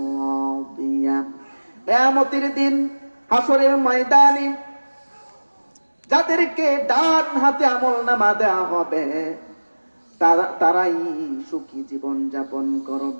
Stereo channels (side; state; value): both; inverted; correlation -1.00